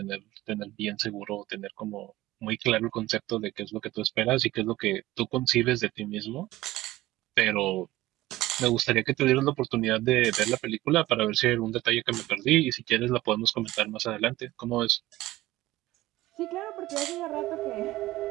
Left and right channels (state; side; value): quieter; left; 17.1 dB